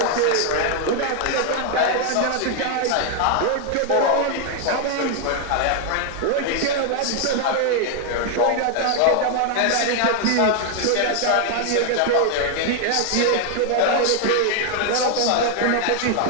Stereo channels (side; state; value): both; different; correlation 0.00